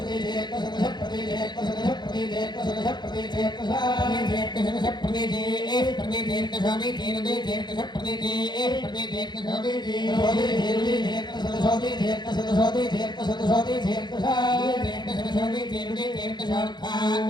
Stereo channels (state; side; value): late; right; 0.21 ms